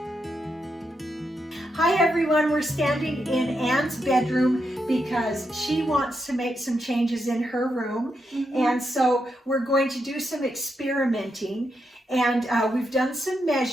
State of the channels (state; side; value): normal; both; correlation 0.83